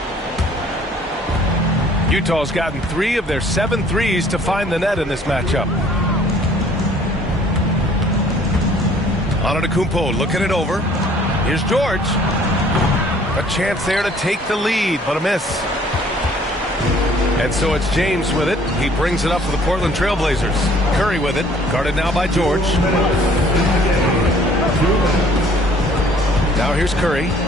Utah's gotten 3 of their 7 threes to find the net in this matchup. Antetokounmpo looking it over. Here's George. A chance there to take the lead, but a miss. And so it's James with it. He brings it up for the Portland Trailblazers. Curry with it. Guarded now by George. Now here's Curry.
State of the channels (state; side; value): normal; both; correlation 0.57